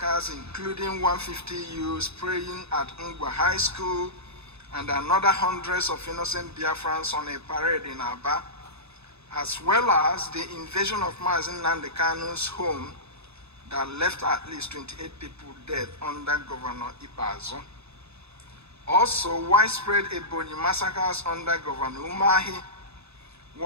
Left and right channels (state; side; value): late; left; 0.79 ms